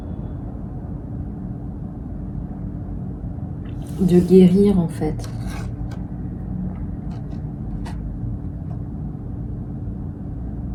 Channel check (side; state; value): both; identical; correlation 1.00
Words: guérir en fait.